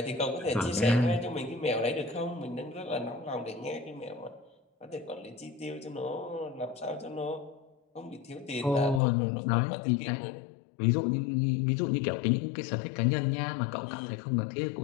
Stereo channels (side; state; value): right; drops out; at 9.0 s